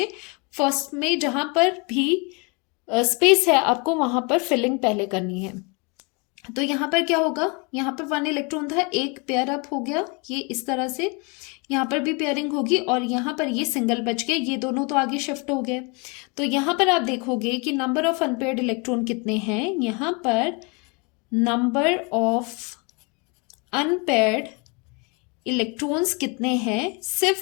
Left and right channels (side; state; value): right; quieter; 31.2 dB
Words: फर्स्ट में जहां पर भी स्पेस है आपको वहां पर फिलिंग पहले करनी है। तो यहाँ पर क्या होगा, यहाँ पर 1 इलेक्ट्रॉन था, एक पेयर अप हो गया, ये इस तरह से, यहाँ पर भी पेयरिंग होगी, और यहाँ पर ये सिंगल बच गए, ये दोनों तो आगे शिफ्ट हो गए। तो यहाँ पर आप देखोगे कि नंबर ऑफ अनपेयर्ड इलेक्ट्रॉन कितने हैं, यहाँ पर नंबर ऑफ अनपेयर्ड इलेक्ट्रॉन्स कितने हैं,